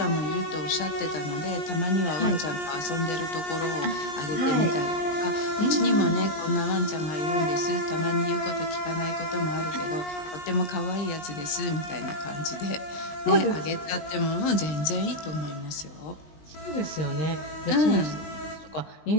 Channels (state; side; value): late; right; 20 ms